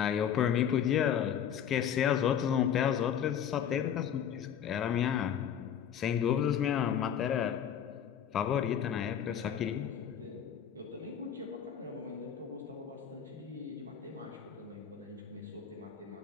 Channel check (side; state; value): right; quieter; 8.9 dB